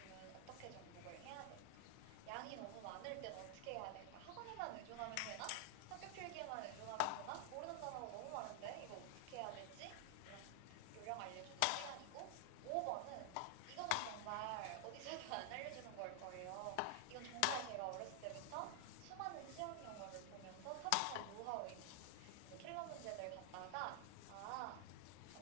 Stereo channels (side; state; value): both; different; correlation 0.00